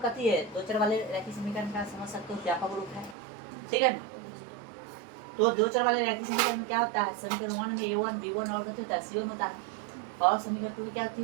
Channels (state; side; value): drops out; left; at 3.2 s